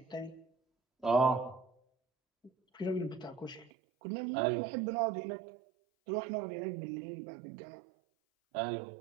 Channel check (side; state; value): left; drops out; at 3.7 s